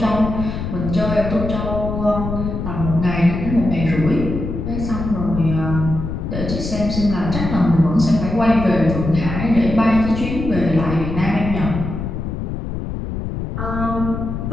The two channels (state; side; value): noise; left; rumble, 5 dB below the sound